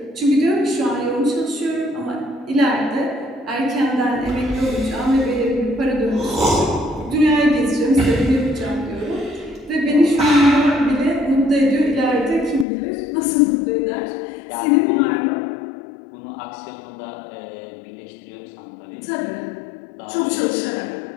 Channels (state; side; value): drops out; right; at 12.7 s